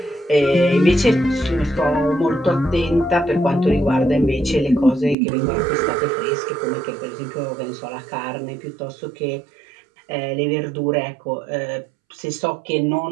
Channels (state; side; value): drops out; left; at 5.2 s